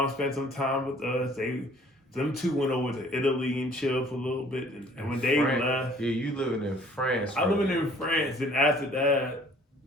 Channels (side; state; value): both; normal; correlation 0.55